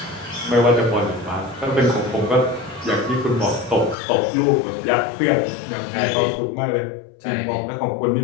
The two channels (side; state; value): right; drops out; at 4.0 s